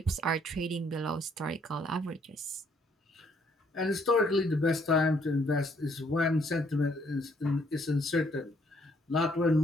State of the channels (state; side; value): normal; both; correlation 0.67